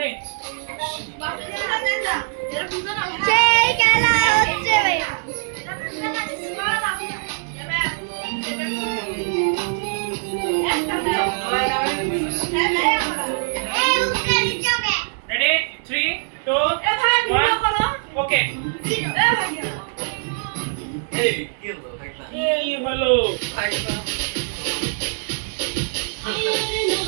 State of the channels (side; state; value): left; silent; digital silence